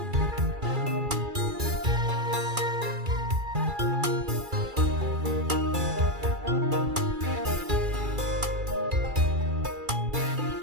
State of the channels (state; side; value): late; left; 2.3 ms